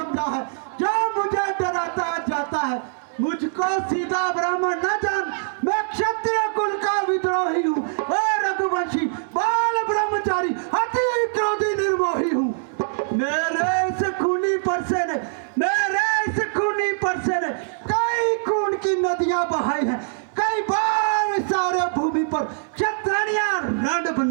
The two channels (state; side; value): silent; left; 63 dB below the other